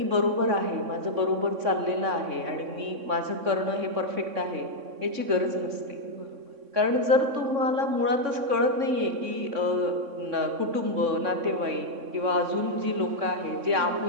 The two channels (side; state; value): left; late; 3.6 ms